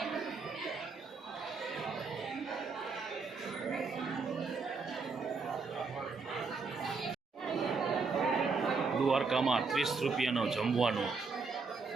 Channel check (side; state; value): left; quieter; 4.5 dB